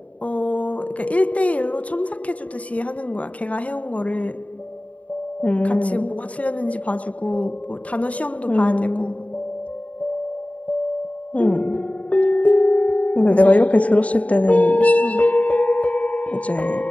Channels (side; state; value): right; late; 0.067 ms